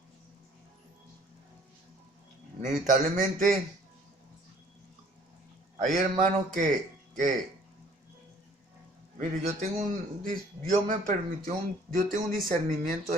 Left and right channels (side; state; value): both; normal; correlation 0.56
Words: Inevitablemente hay hermanos que Mire, Dios me permitió yo tengo un discernimiento